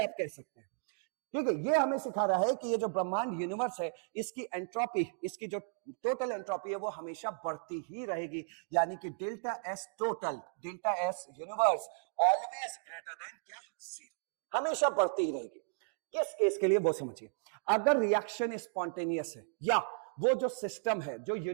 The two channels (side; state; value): left; silent; digital silence